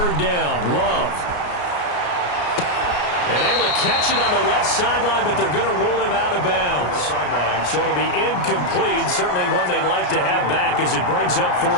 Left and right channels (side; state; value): right; late; 33 ms